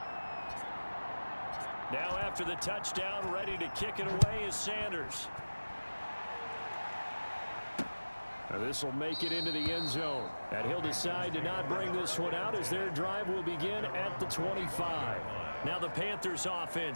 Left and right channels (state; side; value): inverted; both; correlation -1.00